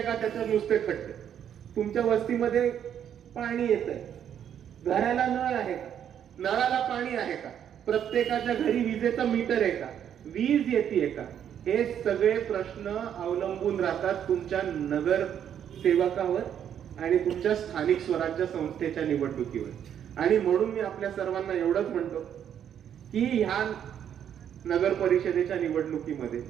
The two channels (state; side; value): quieter; left; 9.3 dB